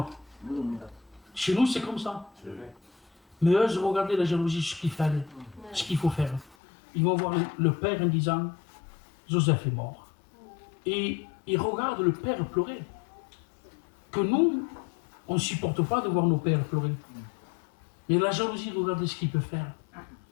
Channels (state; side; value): drops out; right; at 6.6 s